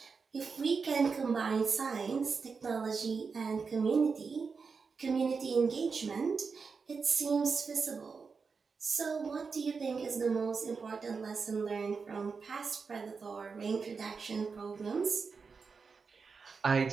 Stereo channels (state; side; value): quieter; left; 5.1 dB